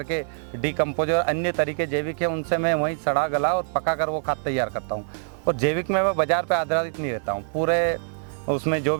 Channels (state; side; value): silent; left; 62 dB below the other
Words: डिकम्पोज और अन्य तरीके जैविक है उनसे मैं वहीं सड़ा गला और पका कर वो खाद तैयार करता हूँ। और जैविक में मैं बाजार पे आधारित नहीं रहता हूँ, पूरे उसमें जो